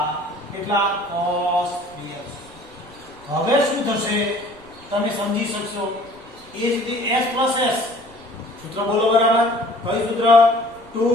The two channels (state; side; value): noise; right; rumble, 27 dB below the sound